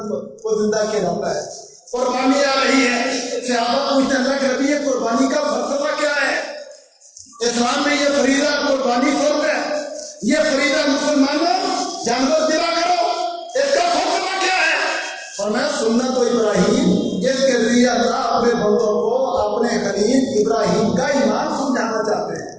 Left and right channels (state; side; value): identical; both; correlation 1.00